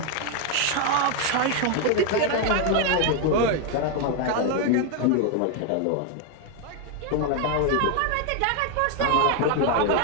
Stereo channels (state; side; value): different; both; correlation 0.01